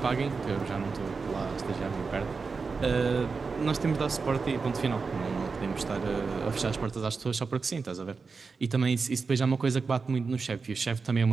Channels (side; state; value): left; quieter; 4.7 dB